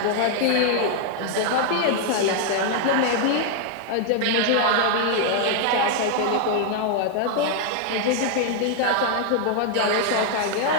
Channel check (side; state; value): both; different; correlation 0.00